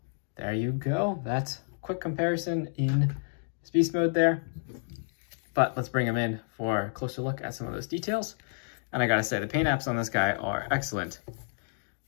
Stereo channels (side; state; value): right; silent; digital silence